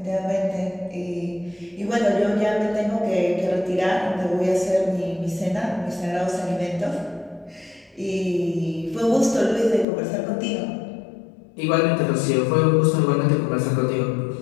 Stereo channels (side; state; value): right; drops out; at 9.9 s